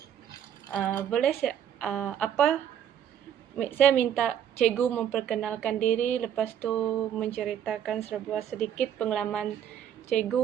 Boleh saya minta cikgu memperkenalkan diri, lepas tu menceritakan sedikit pengalaman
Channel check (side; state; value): left; quieter; 9.5 dB